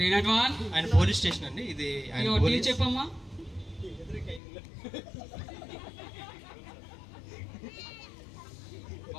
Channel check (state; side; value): drops out; right; at 4.4 s